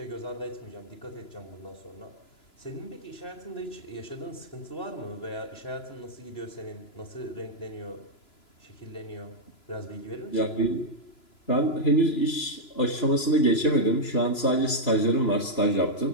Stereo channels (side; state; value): right; late; 2.9 ms